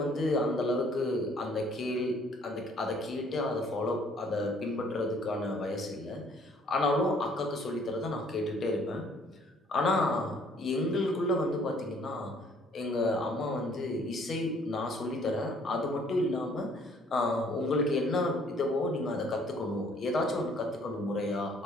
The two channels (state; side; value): normal; both; correlation 0.61